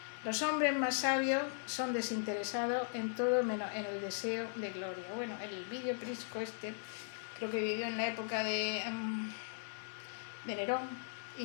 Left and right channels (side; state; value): right; silent; 52 dB below the other